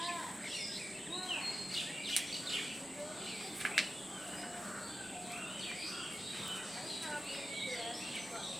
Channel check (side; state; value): both; normal; correlation 0.93